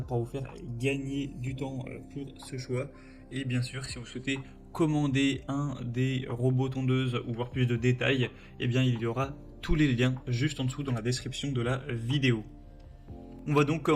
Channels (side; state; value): both; identical; correlation 1.00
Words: pouvoir vous faire gagner du temps pour ce choix. Et bien sûr, si vous souhaitez commander un des robots tondeuses ou voir plus de détails, eh bien il y aura tous les liens juste en dessous dans la description de la vidéo. On va donc